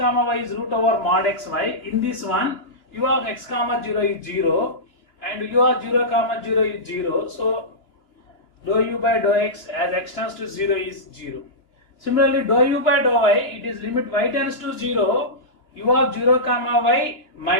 y is root over mod xy. In this one, u of x comma 0 is 0 and u of 0 comma 0 is 0. So dou u by dou x as x tends to 0 is 0. Similarly, dou u by dou y, it is limit y tends to 0, u of 0 comma y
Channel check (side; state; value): right; late; 2.9 ms